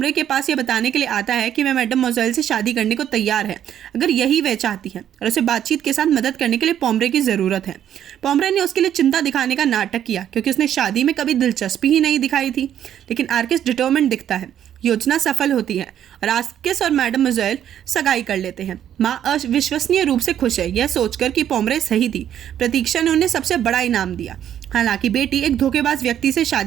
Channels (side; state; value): left; quieter; 10.3 dB